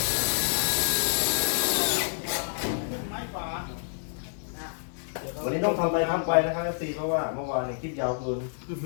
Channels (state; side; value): silent; right; digital silence